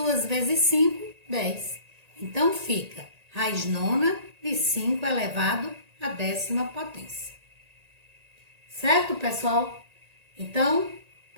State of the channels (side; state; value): left; late; 1.8 ms